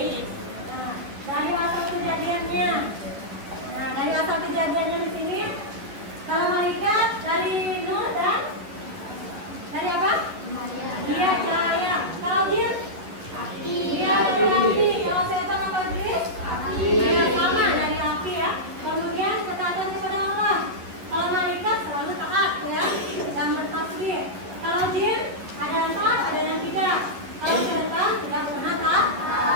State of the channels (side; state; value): left; late; 11 ms